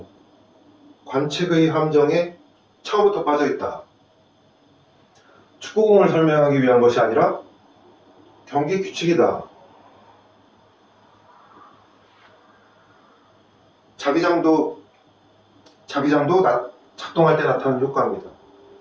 관측의 함정에 처음부터 빠져있다. 축구공을 설명하기 위한 것이 아니라 경기 규칙이다. 자기장도 작동할 때 나타나는 효과입니다.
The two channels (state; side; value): identical; both; correlation 1.00